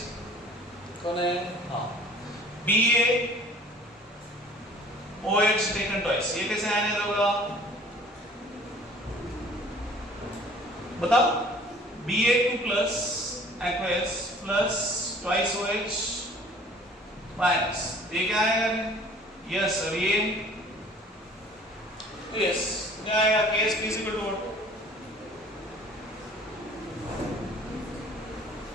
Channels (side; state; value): both; normal; correlation 0.51